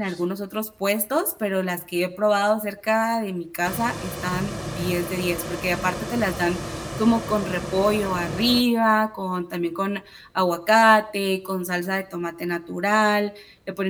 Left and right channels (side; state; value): both; identical; correlation 1.00